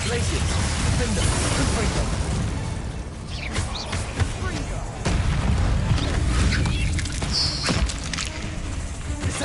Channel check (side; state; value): both; identical; correlation 1.00